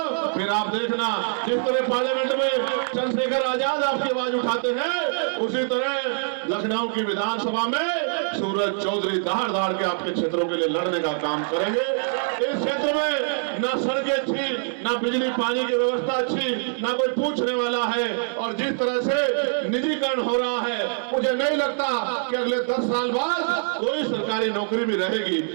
फिर आप देखना जिस तरह पार्लियामेंट में चंद्रशेखर आजाद आपकी आवाज उठाते हैं, उसी तरह लखनऊ की विधानसभा में सूरज चौधरी दहाड़ दहाड़ के आपके क्षेत्रों के लिए लड़ने का काम करेंगे। इस क्षेत्र में ना सड़कें अच्छी, ना बिजली पानी की व्यवस्था अच्छी, ना कोई पूछने वाला है, और जिस तरह से निजीकरण हो रहा है, मुझे नहीं लगता कि अगले 10 साल बाद कोई सरकारी नौकरी भी रहेगी।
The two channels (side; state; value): left; silent; 60 dB below the other